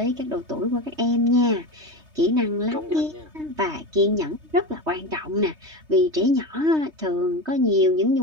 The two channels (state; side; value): late; left; 3.2 ms